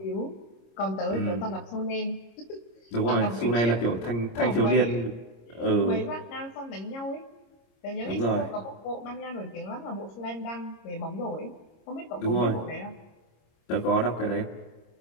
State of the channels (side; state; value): right; late; 26 ms